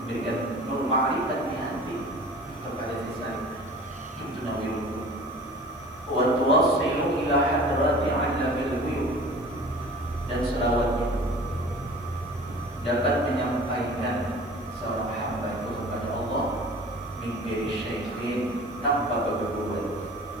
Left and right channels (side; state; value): right; noise; hiss, 27 dB below the sound